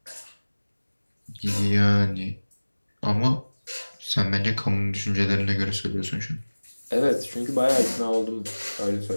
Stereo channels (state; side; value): inverted; both; correlation -1.00